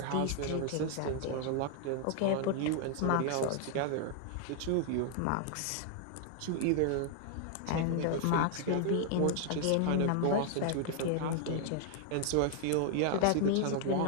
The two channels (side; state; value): both; different; correlation 0.00